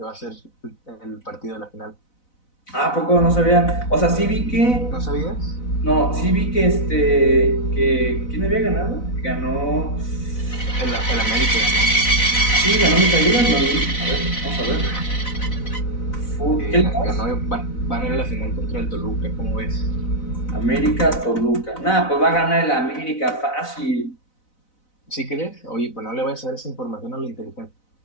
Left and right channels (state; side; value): late; right; 4.0 ms